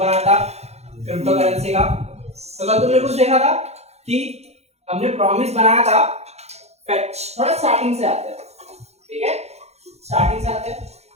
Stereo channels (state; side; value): late; left; 0.31 ms